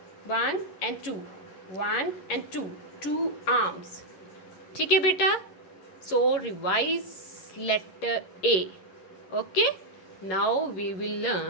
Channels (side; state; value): right; late; 11 ms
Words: 1 and 2, 1 and 2, 2 arms। ठीक है बेटा? So revise letter A. Okay, now we will